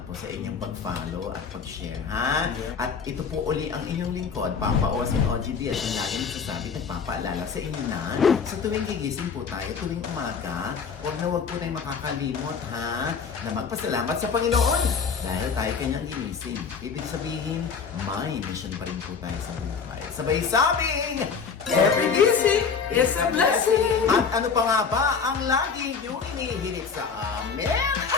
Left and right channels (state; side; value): quieter; right; 5.8 dB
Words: po sa inyong pag-follow at pag-share ha. At ito po uli ang inyong lingkod, Papa Osin OGDS, yung lagi nagsasabi, nagpapaalala sa inyo na sa tuwing gigising po tayo, tuwing umaga, huwag po tayong makakalimot ha, na magpasalamat sa Panginoon dahil tayo kanyang ginising. Ibig sabihin, may mission pa rin po tayo sa buhay. Sabay sabing, Every gising is a blessing. at ano pa nga ba ang lagi niyong inihilig sa amin?